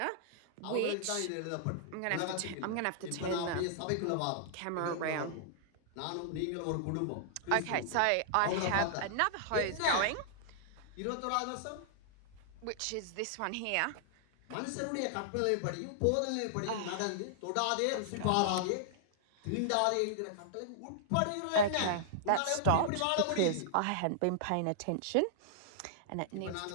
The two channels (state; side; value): different; both; correlation -0.01